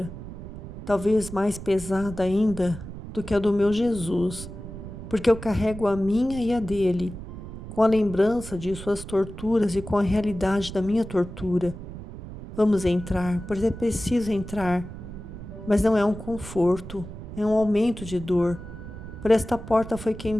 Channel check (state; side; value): noise; right; rumble, 11 dB below the sound